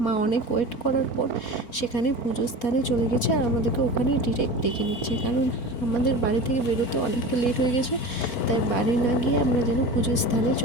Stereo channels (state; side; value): late; right; 4.4 ms